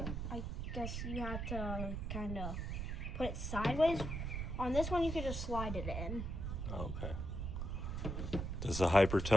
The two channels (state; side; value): noise; right; rumble, 3 dB below the sound